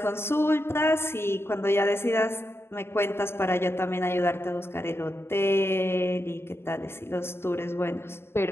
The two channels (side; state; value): right; late; 0.12 ms